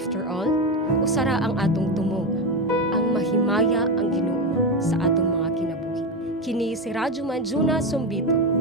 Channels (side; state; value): both; normal; correlation 0.13